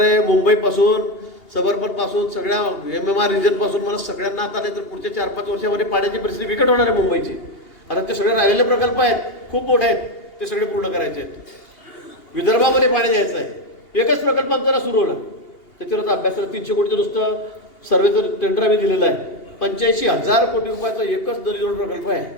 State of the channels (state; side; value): late; right; 2.8 ms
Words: मुंबईपासून सबर्बनपासून सगळ्या MMR रिजनपासून मला सगळ्यांना आता नाही तर पुढच्या 4-5 वर्षामध्ये पाण्याची परिस्थिती बिकट होणार आहे मुंबईची. आता ते सगळे राहिलेले प्रकल्प आहेत, खूप मोठे आहेत, ते सगळे पूर्ण करायचे आहेत. विदर्भामध्ये पाणी द्यायचं आहे. एकच प्रकल्प आमचा सुरू होणार, त्याच्यावर अभ्यासाला 300 कोटीचं नुसतं सर्वेचं टेंडर आम्ही दिलेलं आहे. 85,000 कोटी रुपयाचा एकच नदीजोड प्रकल्प आहे.